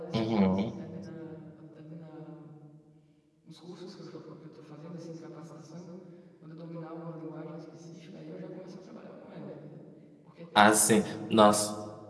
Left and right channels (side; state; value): both; identical; correlation 1.00